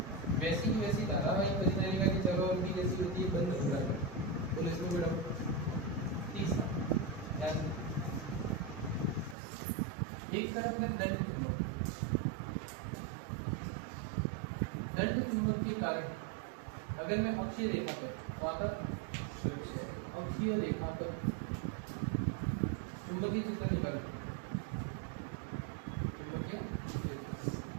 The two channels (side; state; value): left; drops out; at 9.3 s